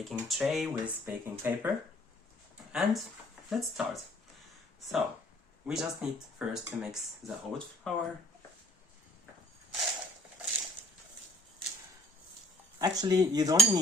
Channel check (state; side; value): normal; both; correlation 0.58